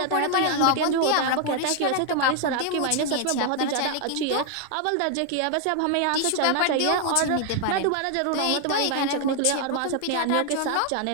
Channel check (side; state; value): both; different; correlation 0.00